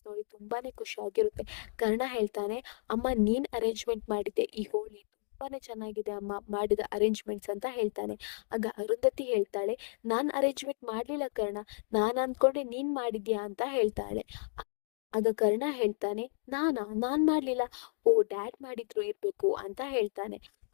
ನೋಡಿ ತುಂಬಾನೇ ಖುಷಿ ಆಗಿರುತ್ತೆ. ಕರ್ಣ ಹೇಳ್ತಾನೆ, ಅಮ್ಮ ನೀನ್ ಅರೇಂಜ್ಮೆಂಟ್ ಮಾಡಿದ್ದೆ ಈ ಹೋಳಿ, ತುಂಬಾನೇ ಚೆನ್ನಾಗಿದೆ ಅಮ್ಮ ಮಾಡಿದ ಅರೇಂಜ್ಮೆಂಟ್ಸ್ ಅಂತ ಹೇಳ್ತಾನೆ. ಆಗ ಅರುಂಧತಿ ಹೇಳ್ತಾಳೆ, ನಾನ್ ಅರೇಂಜ್ಮೆಂಟ್ ಮಾಡ್ಲಿಲ್ಲ ಕರ್ಣ, ನಾನ್ ಅಂದ್ಕೊಂಡೆ ನೀನ್ ಮಾಡಿದ್ಯಾ ಅಂತ ಹೇಳ್ತಾಳೆ. ಆಗ ಕರ್ಣ ಹೇಳ್ತಾನೆ, ನಾನ್ ಮಾಡ್ಲಿಲ್ಲ, ಓ ಡ್ಯಾಡ್ ಮಾಡಿದ್ರು ಇರ್ಬೇಕು ಅಂತ ಹೇಳ್ತಾನೆ.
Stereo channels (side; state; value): right; silent; digital silence